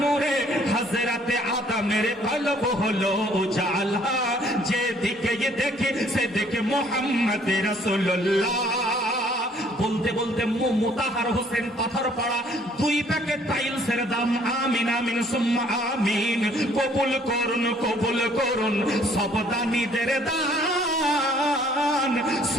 নূরে হযরতে আদমের কলব হলো উজালা। যেদিকে দেখি সেদিকে মোহাম্মদ রাসূলুল্লাহ। বলতে বলতে মুতাহার হোসেন পাথর পড়া 2 প্যাকেট টাইলসের দাম। আমিন আমিন সুম্মা আমিন। কবুল করুন কবুল করুন সব দানীদের দান,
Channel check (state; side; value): normal; both; correlation 0.61